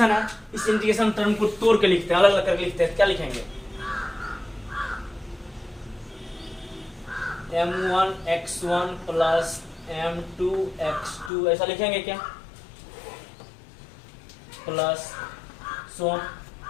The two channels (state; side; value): drops out; right; at 11.3 s